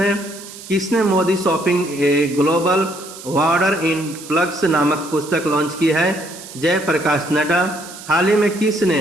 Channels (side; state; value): right; noise; hiss, 15 dB below the sound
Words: किसने Modi shopping a global वार्डर in plugs नामक पुस्तक लॉन्च की है? जयप्रकाश नड्डा। हाल ही में